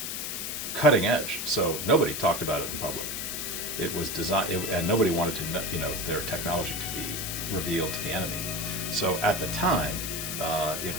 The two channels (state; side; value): noise; left; hiss, 4 dB below the sound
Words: cutting edge, so nobody talked about it in public. It was designed, and nobody wanted to, their technology to be revealed to the enemy. So at the time, it